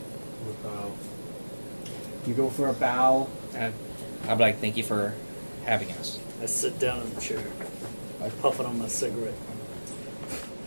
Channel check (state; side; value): inverted; both; correlation -1.00